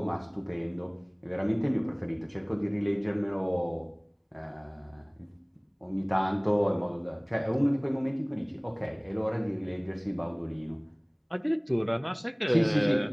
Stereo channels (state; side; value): identical; both; correlation 1.00